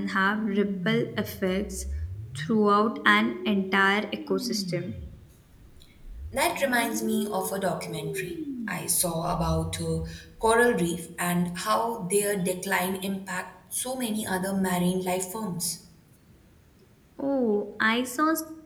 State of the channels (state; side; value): identical; both; correlation 1.00